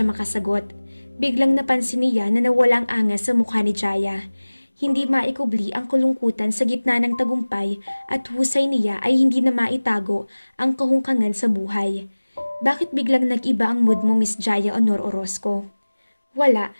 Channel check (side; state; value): both; inverted; correlation -1.00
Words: makasagot. Biglang napansin niya na nawalang angas sa mukha ni Jaya. Hindi maikubli ang kulungkutan sa gitna ng tagumpay at husay niya ay hindi na maitago ang kahungkangan sa buhay. Bakit biglang nag-iba ang mood mo, Miss Jaya Honor Orozco? Wala.